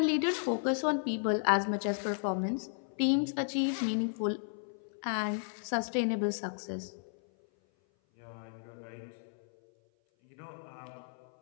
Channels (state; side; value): silent; right; 55 dB below the other